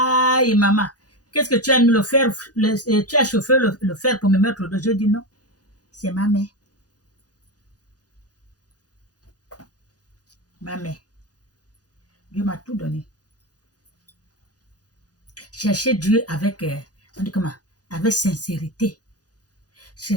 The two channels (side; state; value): right; late; 0.68 ms